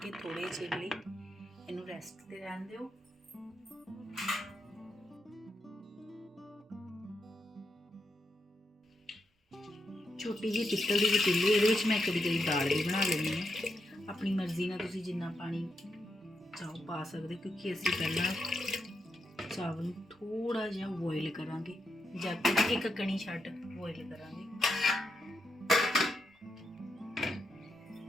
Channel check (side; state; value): both; normal; correlation 0.83